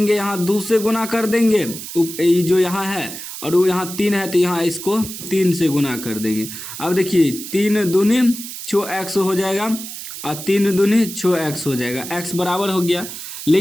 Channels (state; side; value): noise; right; hiss, 10 dB below the sound